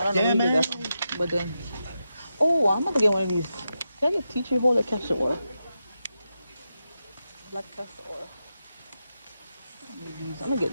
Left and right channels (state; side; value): inverted; both; correlation -0.88